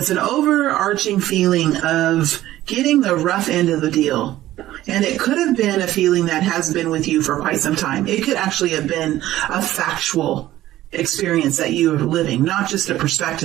an overarching feeling of getting the rough end of the deal. And it could have been a feeling that has been with you for quite some time. It could actually have been a factual experience that you are living, not just a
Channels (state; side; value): quieter; left; 14.6 dB